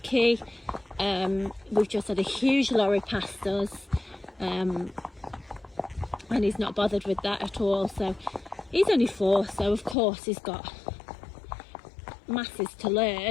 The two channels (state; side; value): drops out; right; at 10.0 s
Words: We've just had a huge lorry past us, and he's not bothered with that at all. So he's only 4, so of course he's got masses to